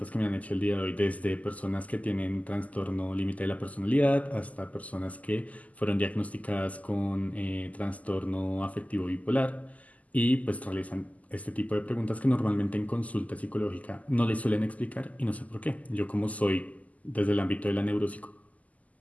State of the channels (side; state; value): right; late; 0.074 ms